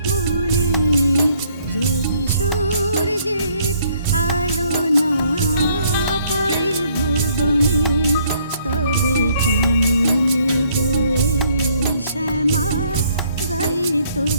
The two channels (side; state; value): both; inverted; correlation -0.66